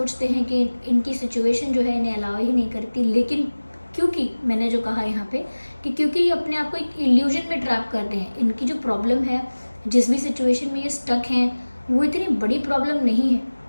हैं कि इनकी सिचुएशन जो है इन्हें अलाउ ही नहीं करती, लेकिन क्योंकि मैंने जो कहा यहाँ पे कि क्योंकि ये अपने आप को एक इल्यूजन में ट्रैप करते हैं। इनकी जो प्रॉब्लम है, जिस भी सिचुएशन में ये स्टक हैं, वो इतनी बड़ी प्रॉब्लम नहीं है।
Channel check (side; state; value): both; inverted; correlation -1.00